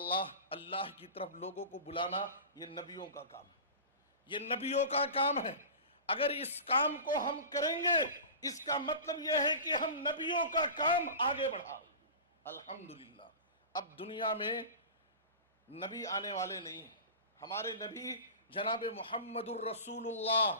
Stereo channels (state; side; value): inverted; both; correlation -0.32